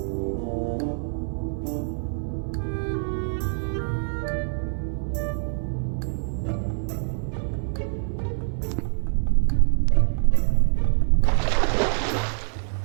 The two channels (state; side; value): silent; left; 56 dB below the other